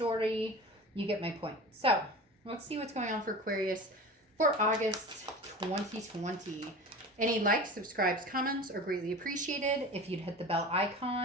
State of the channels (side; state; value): both; normal; correlation 0.35